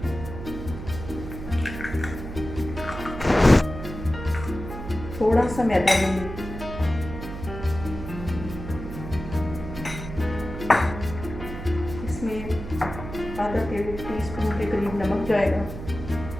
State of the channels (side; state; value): right; noise; hum, 9 dB below the sound